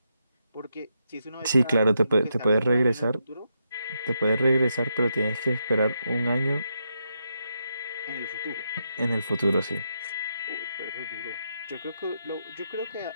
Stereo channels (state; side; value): inverted; both; correlation -0.83